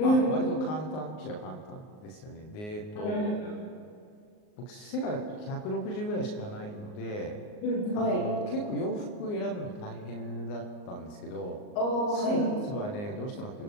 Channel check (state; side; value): late; right; 38 ms